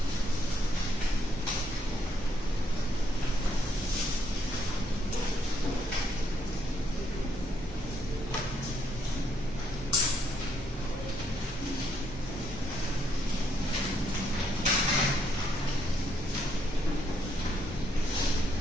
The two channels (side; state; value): both; normal; correlation 0.74